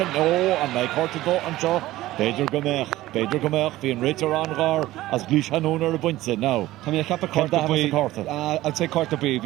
no and like Hortigo and Shaw Peter Gomech being Ritter on Gar as Cluiche Ceannais or a bunch now. Come here, cap a court I'd say court to be.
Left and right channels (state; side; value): quieter; left; 16.4 dB